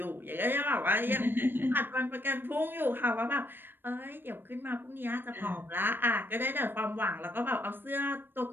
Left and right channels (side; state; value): left; late; 0.097 ms